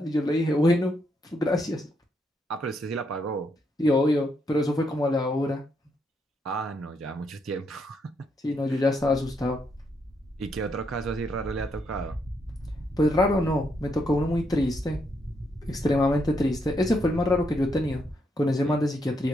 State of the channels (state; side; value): normal; both; correlation 0.77